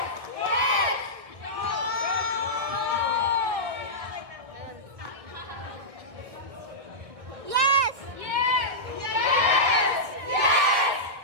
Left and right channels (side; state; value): left; late; 1.6 ms